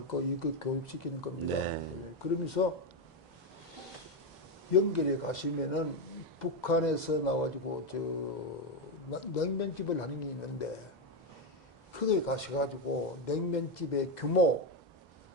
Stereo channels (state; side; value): normal; both; correlation 0.08